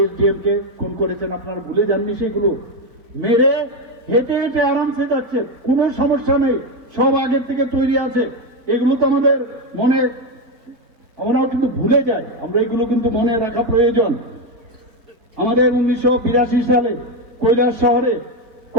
এসডিএম কে খুন করেছেন আপনারা ভুলে যাননি সেগুলো মেরে হেঁটে হেঁটে আরামসে যাচ্ছে কোনো সমস্যা নেই সব আগের থেকে তৈরি আছে এগুলো তো আমাদের মনে আমরাও কিন্তু ভুলে যাই আমরা এগুলো কিন্তু মনে রাখা প্রয়োজন আমাদের 1982 সালে কৈলাস শহরে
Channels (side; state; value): left; late; 4.5 ms